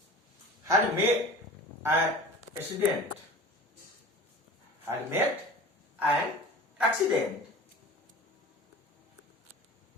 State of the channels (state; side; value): normal; both; correlation 0.40